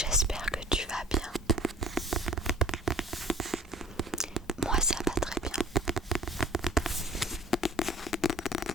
que tu vas bien. Moi ça va très bien.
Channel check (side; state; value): both; normal; correlation 0.49